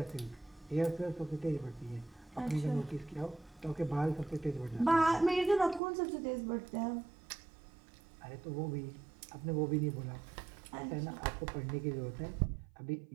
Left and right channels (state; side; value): drops out; left; at 5.8 s